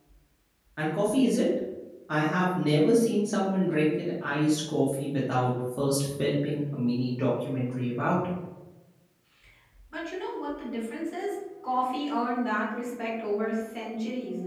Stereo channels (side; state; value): both; identical; correlation 1.00